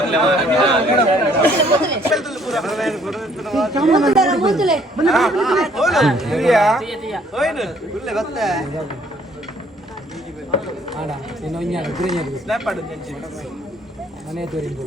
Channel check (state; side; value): normal; both; correlation 0.62